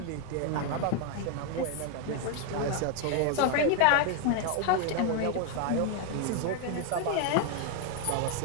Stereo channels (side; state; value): both; different; correlation 0.01